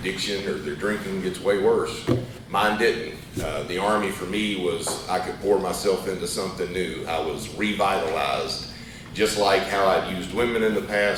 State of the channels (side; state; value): both; identical; correlation 1.00